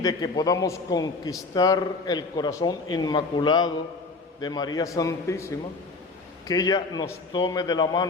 de que podamos conquistar el corazón inmaculado de María Santísima, que ella nos tome de la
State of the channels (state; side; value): quieter; right; 3.7 dB